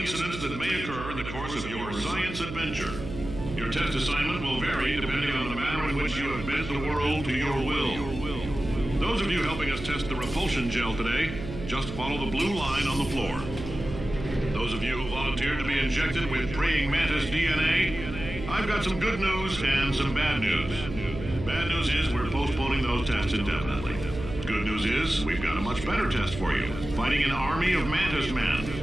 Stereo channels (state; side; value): noise; right; hum, 9 dB below the sound